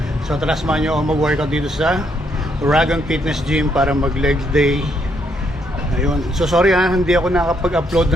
So tara, samahan nyo ako mag-workout dito sa Uragan Fitness Gym para mag-legs day. Ayun. So sorry hindi ako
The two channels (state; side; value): normal; both; correlation 0.74